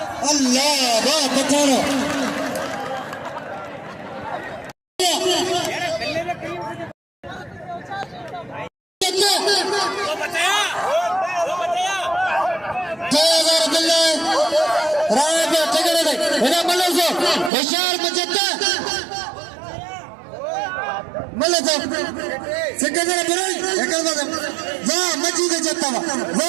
अल्लाह वाह पठारो होशियार मचता मल्ले तो सिकंदर बुराई एकल बात वाह मची दे जत्ता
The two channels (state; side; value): drops out; left; at 17.5 s